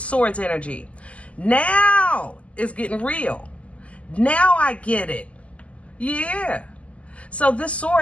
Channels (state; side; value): late; right; 0.064 ms